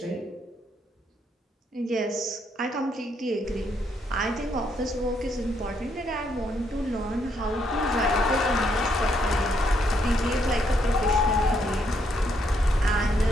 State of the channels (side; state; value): both; normal; correlation 0.74